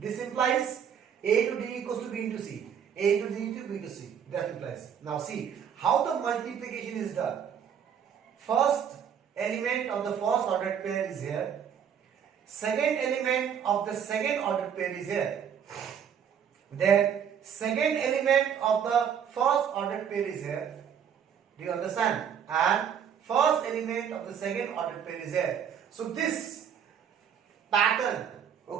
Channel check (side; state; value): left; quieter; 8.2 dB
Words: implies A to D equals to B into C. A to D to B to C. That implies. Now see how the multiplication is done. First element of the first ordered pair is here. Second element of the second ordered pair is here. Then second element of the first ordered pair is here. Do you understand? And first element of the second ordered pair is here. So this pattern,